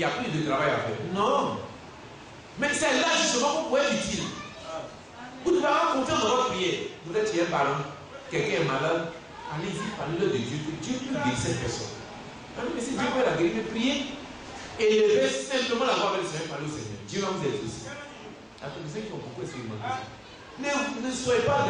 a plus de travail à faire. Non. Mais c'est là justement qu'on pourrait être utile. Vous devez avoir confiance dans votre prière. Vous êtes chez un parent, quelqu'un est malade, allez-y, parlez-le de Dieu, que Dieu peut guérir cette personne. Mais si Dieu peut la guérir, priez. Élevez simplement la voix avec le Seigneur, parlez au Seigneur. Dieu va vous exaucer. Il y a ceux qui ont beaucoup expérimenté ça. Ne soyez pas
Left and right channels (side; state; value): both; identical; correlation 1.00